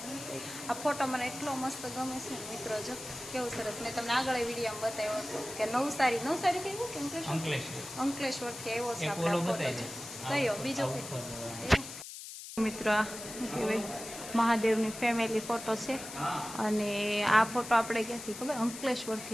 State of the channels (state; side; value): noise; left; hiss, 11 dB below the sound